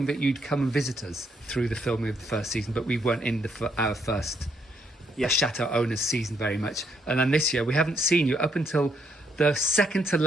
that you'd come and visit us through the filming of the first season, but we weren't in our first Chateau owners season very much. And then this year we haven't seen you up until the second to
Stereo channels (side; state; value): both; normal; correlation 0.73